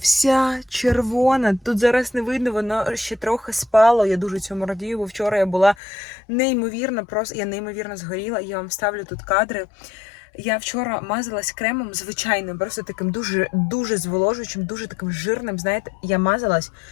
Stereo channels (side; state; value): right; drops out; at 5.8 s